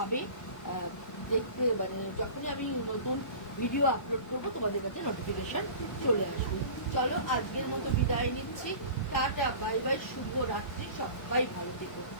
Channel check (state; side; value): late; right; 1.1 ms